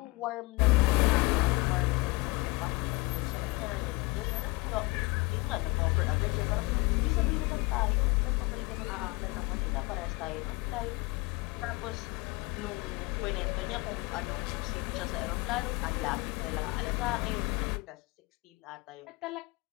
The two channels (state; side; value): quieter; right; 24.0 dB